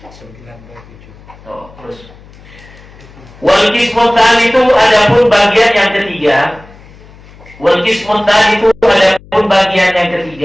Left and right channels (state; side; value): noise; left; hum, 23 dB below the sound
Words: 97. Oh, terus. Wal qismutan itu adapun bagian yang ketiga. Wal qismutan itu adapun bagian yang